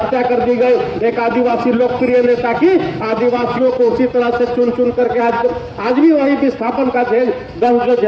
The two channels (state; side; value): identical; both; correlation 1.00